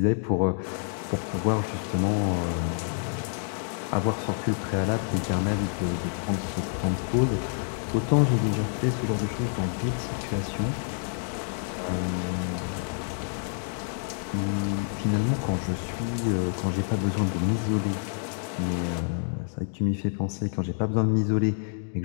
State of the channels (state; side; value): silent; right; digital silence